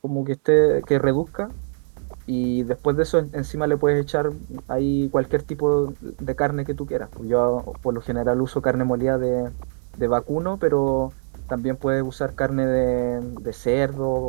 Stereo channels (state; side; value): silent; left; digital silence